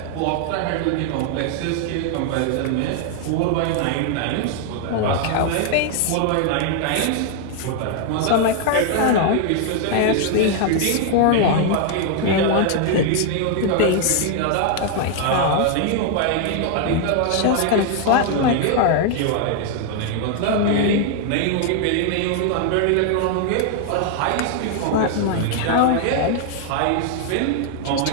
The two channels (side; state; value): both; different; correlation 0.00